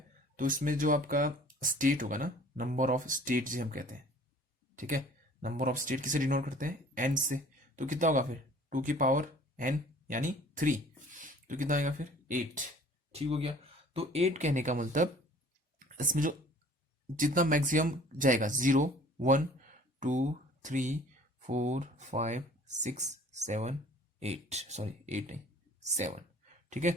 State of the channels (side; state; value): both; normal; correlation 0.50